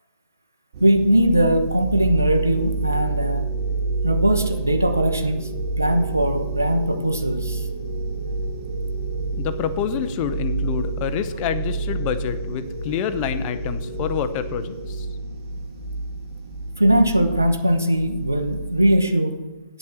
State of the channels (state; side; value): inverted; both; correlation -0.77